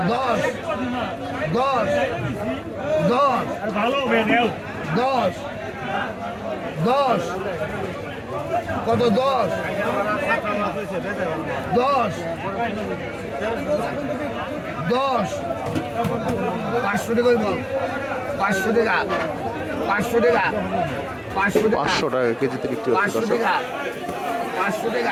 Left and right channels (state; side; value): identical; both; correlation 1.00